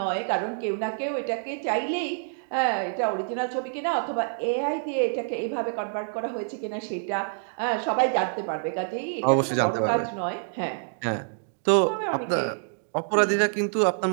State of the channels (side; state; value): left; silent; digital silence